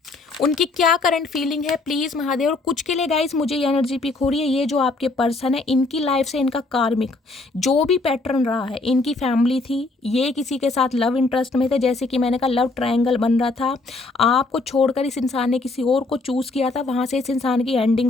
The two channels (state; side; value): quieter; right; 3.3 dB